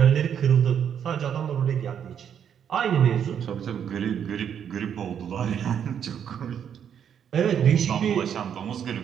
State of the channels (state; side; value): quieter; left; 8.5 dB